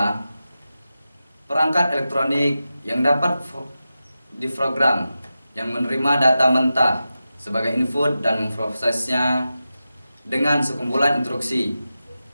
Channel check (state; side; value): inverted; both; correlation -0.92